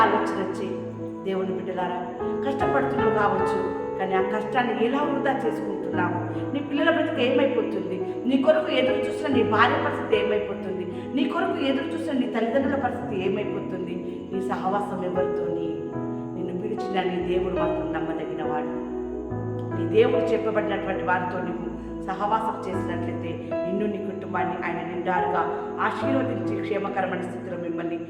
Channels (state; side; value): identical; both; correlation 1.00